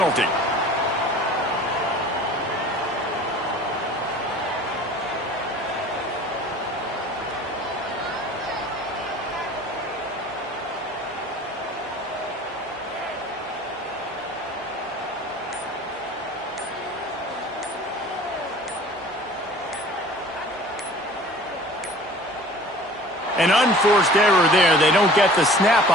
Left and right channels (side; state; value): both; normal; correlation 0.45